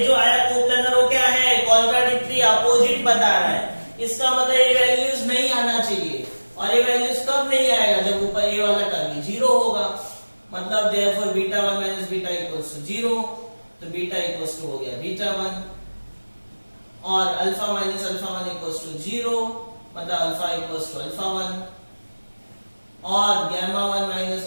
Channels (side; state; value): both; inverted; correlation -1.00